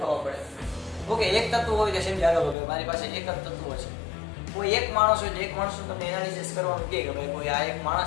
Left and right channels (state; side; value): drops out; right; at 2.6 s